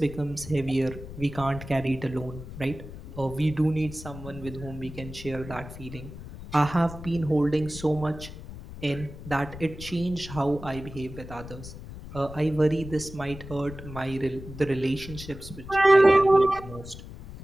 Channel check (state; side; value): noise; left; rumble, 13 dB below the sound